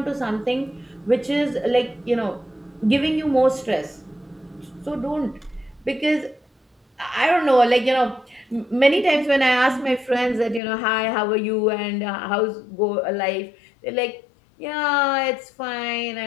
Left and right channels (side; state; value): right; drops out; at 10.6 s